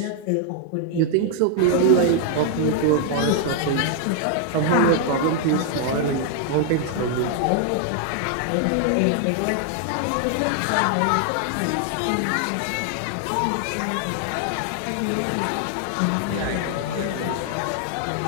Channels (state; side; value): different; both; correlation 0.00